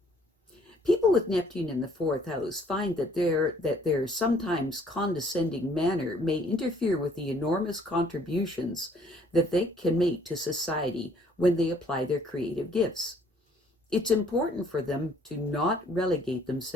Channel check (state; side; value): normal; both; correlation 0.61